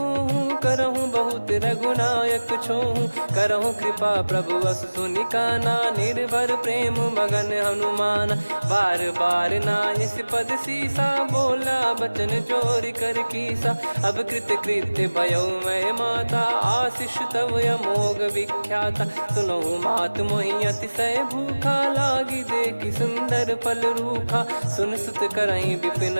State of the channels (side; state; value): both; inverted; correlation -1.00